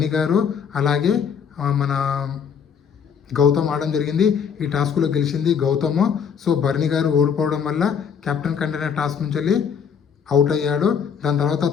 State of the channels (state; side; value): quieter; right; 7.1 dB